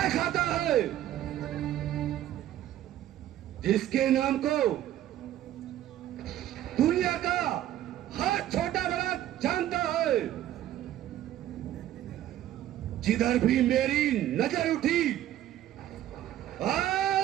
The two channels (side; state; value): left; quieter; 12.7 dB